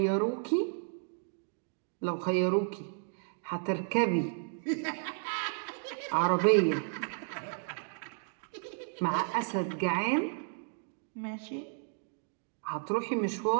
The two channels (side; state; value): left; silent; digital silence